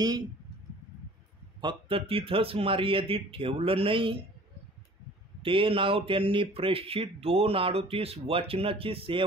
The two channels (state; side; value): normal; both; correlation 0.48